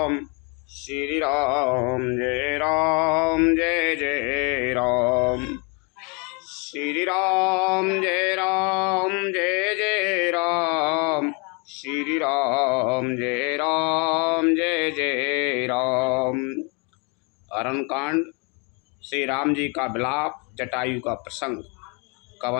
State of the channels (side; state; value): right; quieter; 31.7 dB